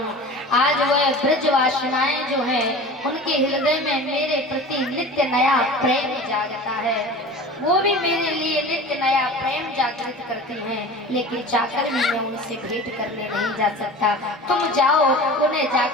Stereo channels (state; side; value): normal; both; correlation 0.37